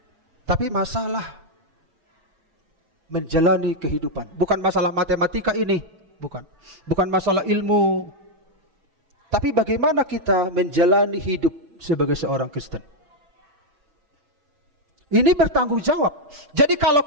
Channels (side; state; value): left; late; 6.1 ms